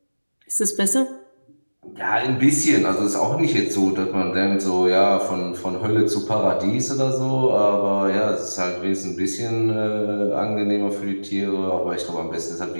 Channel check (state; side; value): inverted; both; correlation -1.00